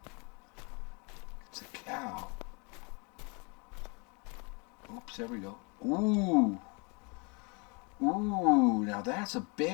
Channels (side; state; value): right; quieter; 31.5 dB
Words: It's a cow. Oops, there we go. Ooh. Ooh, now that's a